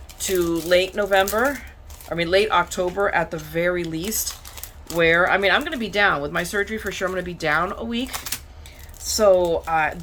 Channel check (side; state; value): both; identical; correlation 1.00